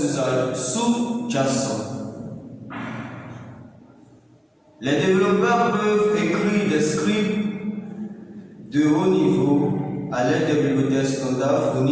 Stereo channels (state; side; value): identical; both; correlation 1.00